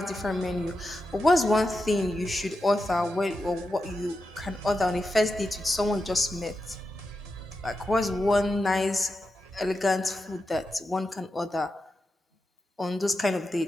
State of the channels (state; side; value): normal; both; correlation 0.89